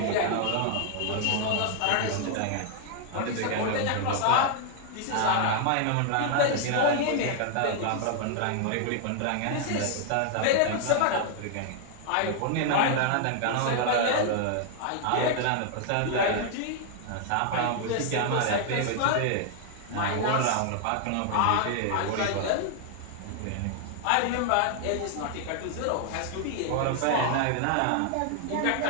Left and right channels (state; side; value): different; both; correlation 0.00